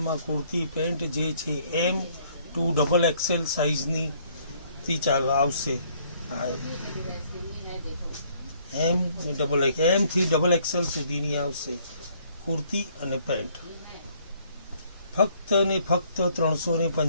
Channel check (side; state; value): both; inverted; correlation -0.64